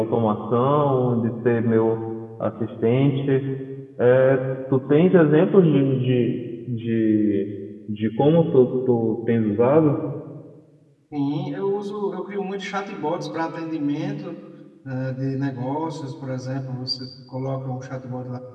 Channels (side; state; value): both; identical; correlation 1.00